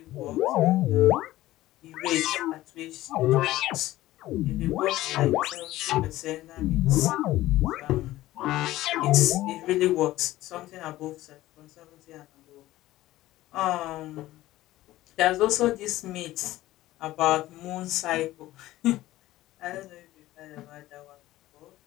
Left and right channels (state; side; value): quieter; right; 16.1 dB